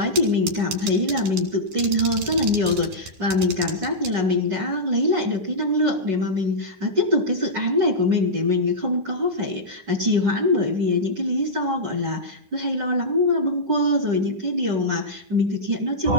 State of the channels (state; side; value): late; left; 9.9 ms